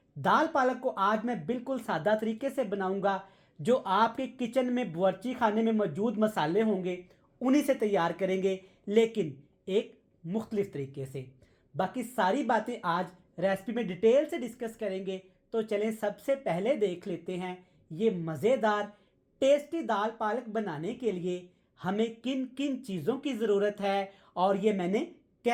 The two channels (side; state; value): both; identical; correlation 1.00